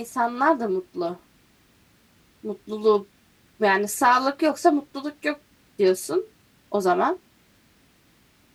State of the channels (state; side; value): identical; both; correlation 1.00